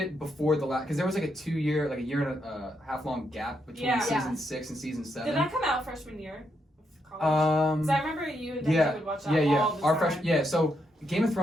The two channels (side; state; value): both; normal; correlation 0.80